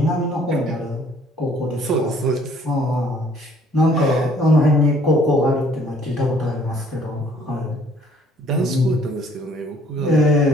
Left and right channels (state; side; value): normal; both; correlation 0.59